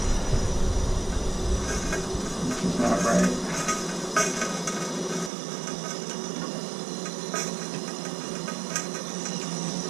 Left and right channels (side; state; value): left; drops out; at 5.3 s